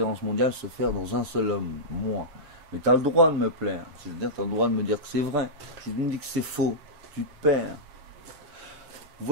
mondiales se faire dans un seul homme, moi. Mais tu as le droit de me plaire. C'est-à-dire, tu as le droit de me dire que c'est vrai. Si tu me dis que c'est faux, tu te perds.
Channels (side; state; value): left; late; 7.4 ms